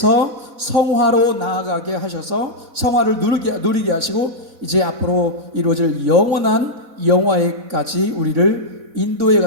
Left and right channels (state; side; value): late; left; 4.0 ms